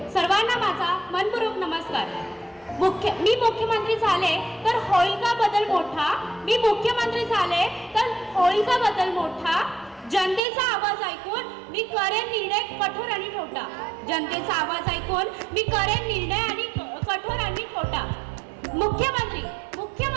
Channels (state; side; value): drops out; left; at 10.4 s